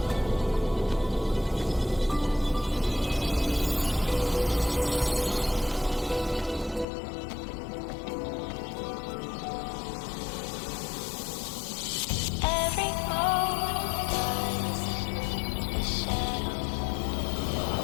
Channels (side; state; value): right; drops out; at 6.9 s